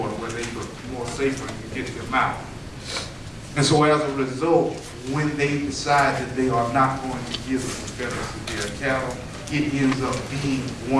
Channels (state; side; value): identical; both; correlation 1.00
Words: where they were more safer and could get them out. And so as a result, when they decide that they are not going to give the Confederacy their cattle, it ends up being